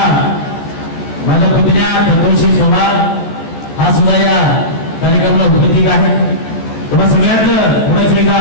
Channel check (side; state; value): right; late; 14 ms